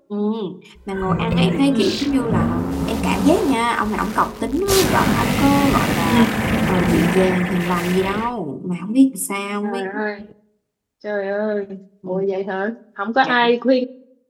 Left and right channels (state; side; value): identical; both; correlation 1.00